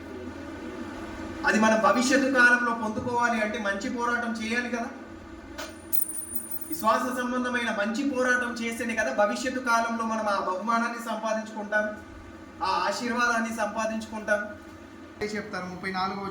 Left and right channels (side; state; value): both; identical; correlation 1.00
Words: అది మనం భవిష్యత్తు కాలంలో పొందుకోవాలి అంటే మంచి పోరాటం చేయాలి కదా. విశ్వాస సంబంధమైన మంచి పోరాటం చేస్తేనే కదా భవిష్యత్తు కాలంలో మనం ఆ బహుమానాన్ని సంపాదించుకుంటాం, ఆ ఆశీర్వాదాన్ని సంపాదించుకుంటాం. చెప్తారు 34వ